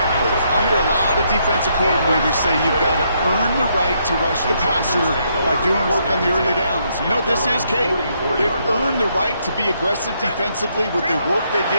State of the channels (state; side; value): inverted; both; correlation -0.74